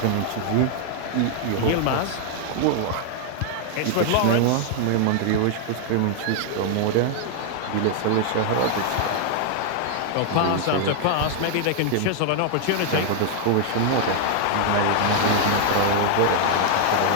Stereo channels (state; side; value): different; both; correlation 0.00